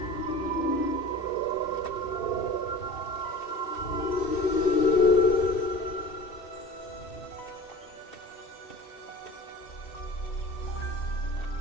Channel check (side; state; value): right; late; 2.7 ms